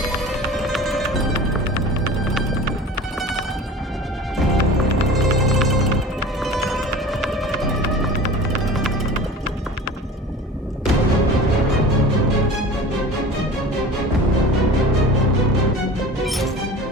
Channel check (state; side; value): normal; both; correlation 0.37